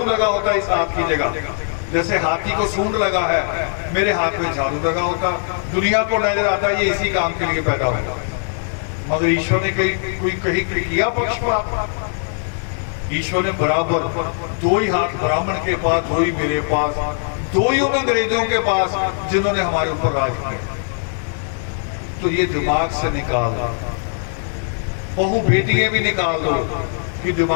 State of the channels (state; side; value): silent; right; digital silence